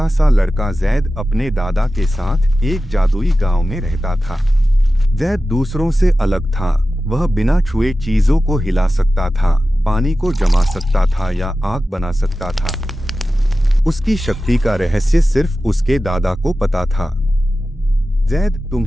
सा लड़का जैद अपने दादा के साथ एक जादुई गांव में रहता था। जैद दूसरों से अलग था। वह बिना छुए चीजों को हिला सकता था, पानी को जमा सकता था या आग बना सकता था। उसकी शक्ति का रहस्य सिर्फ उसके दादा को पता था। जैद,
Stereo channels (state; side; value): normal; both; correlation 0.94